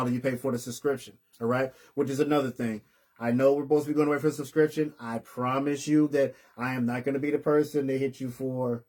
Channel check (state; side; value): identical; both; correlation 1.00